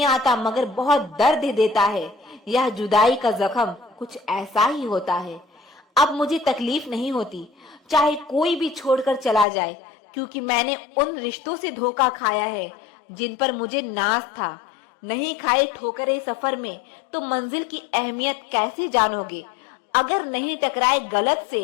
आता मगर बहुत दर्द देता है। यह जुदाई का जख्म कुछ ऐसा ही होता है। अब मुझे तकलीफ नहीं होती चाहे कोई भी छोड़कर चला जाए, क्योंकि मैंने उन रिश्तों से धोखा खाया है जिन पर मुझे नाज था। नहीं खाए ठोकरे सफर में तो मंजिल की अहमियत कैसे जानोगे? अगर नहीं टकराए गलत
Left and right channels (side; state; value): right; drops out; at 9.5 s